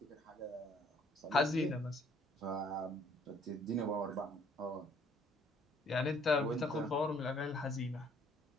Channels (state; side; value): normal; both; correlation 0.62